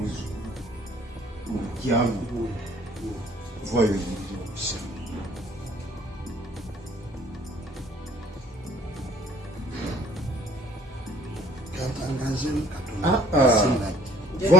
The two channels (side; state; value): both; normal; correlation 0.57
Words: mukyamu vayo yingira okusaba katangaze